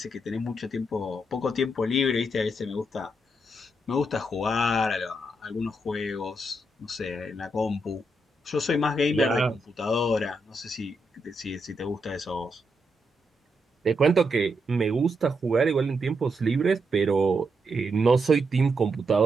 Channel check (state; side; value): normal; both; correlation 0.81